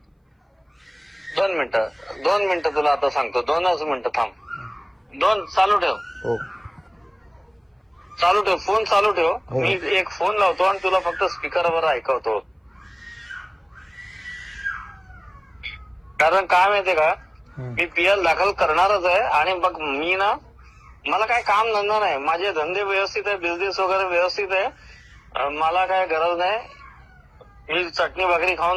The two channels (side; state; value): both; identical; correlation 1.00